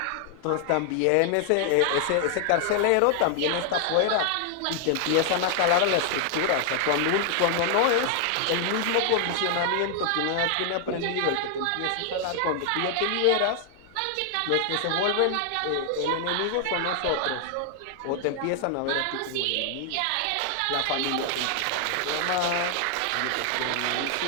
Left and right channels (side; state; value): both; different; correlation 0.00